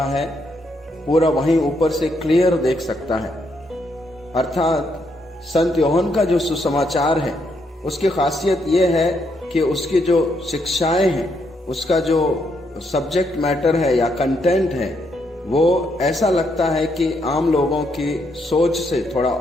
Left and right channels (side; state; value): both; normal; correlation 0.76